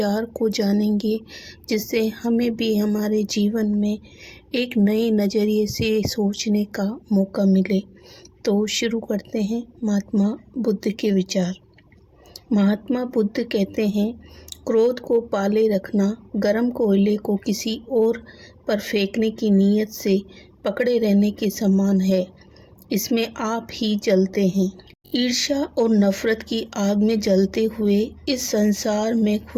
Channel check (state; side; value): identical; both; correlation 1.00